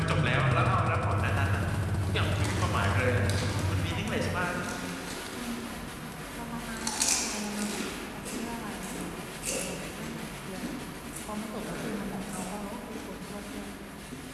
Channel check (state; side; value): identical; both; correlation 1.00